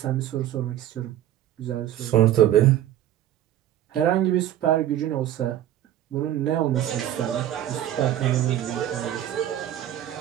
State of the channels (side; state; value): left; quieter; 12.0 dB